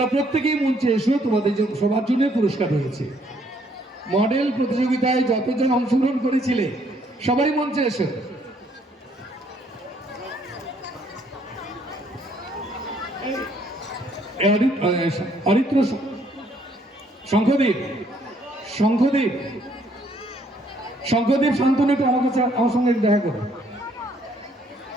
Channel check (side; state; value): both; normal; correlation 0.67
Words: প্রত্যেকেই মঞ্চে এসো, তোমাদের সবার জন্য পুরস্কার রয়েছে। মডেল প্রতিযোগিতায় যতজন অংশগ্রহণ করেছিলে সবাই মঞ্চে এসো। অরিত্র শঙ্খদীপ শান্তনু, একটু আমার সঙ্গে দেখা করো।